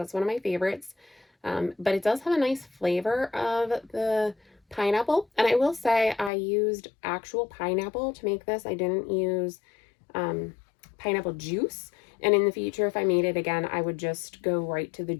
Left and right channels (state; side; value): drops out; right; at 6.3 s